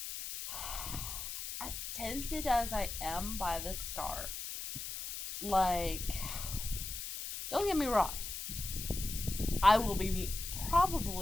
as tempted as I am by this scarf, like, don't get me wrong, I will be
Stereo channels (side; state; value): left; noise; hiss, 6 dB below the sound